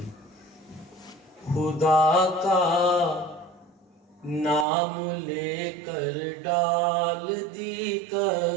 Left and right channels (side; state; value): left; drops out; at 4.7 s